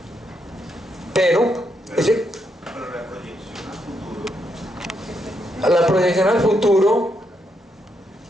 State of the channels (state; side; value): normal; both; correlation 0.79